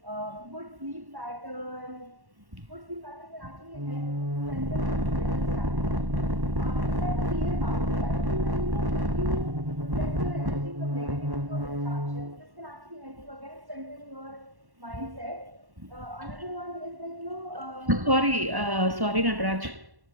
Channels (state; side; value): late; left; 1.1 ms